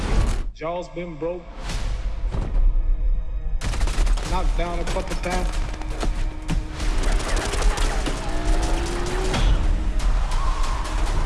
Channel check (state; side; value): identical; both; correlation 1.00